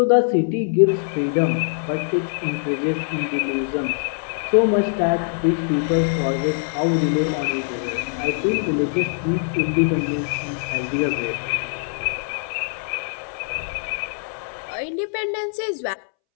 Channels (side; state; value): right; silent; 64 dB below the other